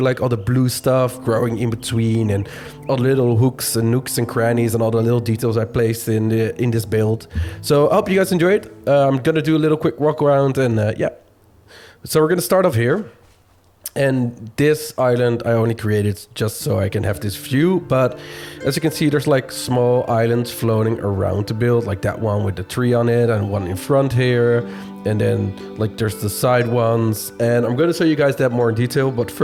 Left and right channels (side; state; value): both; identical; correlation 1.00